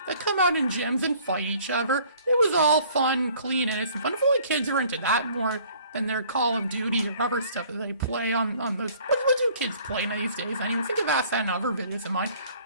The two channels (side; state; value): both; inverted; correlation -0.55